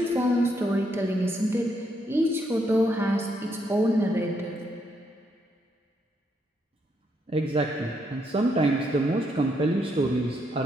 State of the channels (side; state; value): both; normal; correlation 0.76